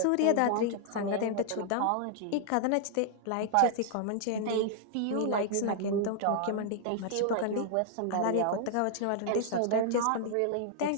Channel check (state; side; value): different; both; correlation -0.01